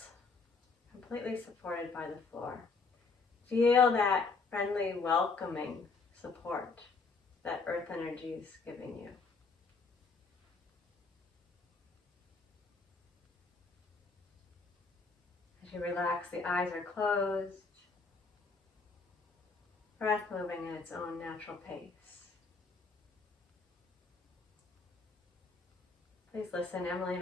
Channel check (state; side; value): quieter; right; 4.3 dB